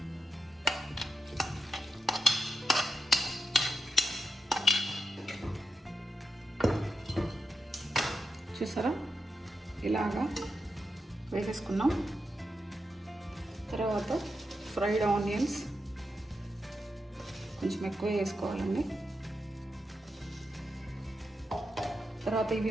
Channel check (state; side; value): normal; both; correlation 0.86